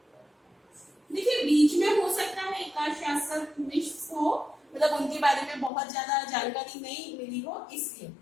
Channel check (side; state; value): right; drops out; at 5.7 s